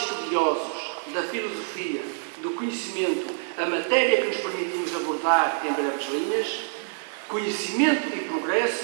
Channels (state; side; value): silent; left; digital silence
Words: da filosofia, do conhecimento, a matéria que nos permitimos abordar em breves linhas, conhecimento e